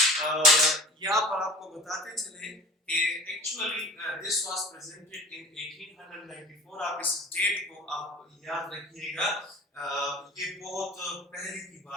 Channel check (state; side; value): normal; both; correlation 0.41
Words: یہاں پر آپ کو بتاتے چلیں کہ ایکچولی دس واز پریزنٹڈ ان 1894. آپ اس ڈیٹ کو آپ یاد رکھیے گا, یہ بہت پہلے کی